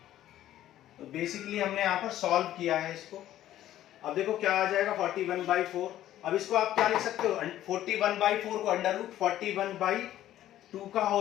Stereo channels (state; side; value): quieter; right; 12.9 dB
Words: तो बेसिकली हमने यहां पर सॉल्व किया है इसको। अब देखो क्या आ जाएगा, 41/4। अब इसको आप क्या लिख सकते हो, 41/4 को √41/2 का